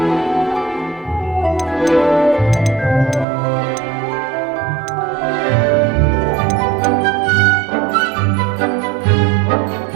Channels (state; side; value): drops out; left; at 3.2 s